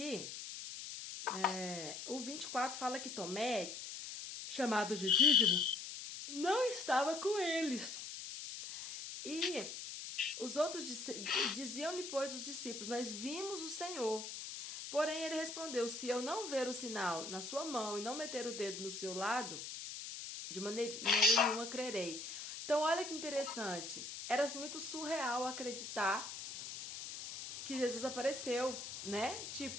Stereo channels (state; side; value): noise; left; hiss, 8 dB below the sound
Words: o 24 fala que Tomé, chamado de Dídimo, não estava com eles. E os outros diziam-lhe, pois, os discípulos, nós vimos o Senhor. Porém, ele respondeu, se eu não ver o sinal na sua mão e não meter o dedo no seu lado, de maneira nenhuma crerei. Então, olha que interessante. Era muito surreal acreditar que Jesus apareceu, né?